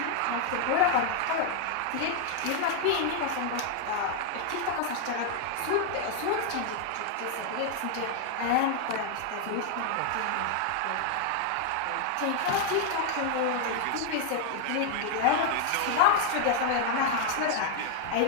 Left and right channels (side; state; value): both; different; correlation 0.00